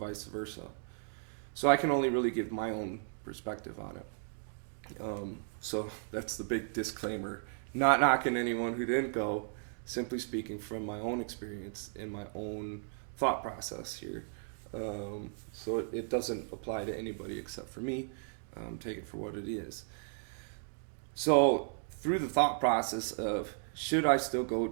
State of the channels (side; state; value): left; silent; digital silence